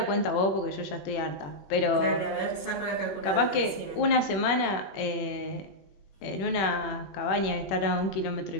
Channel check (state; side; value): late; right; 21 ms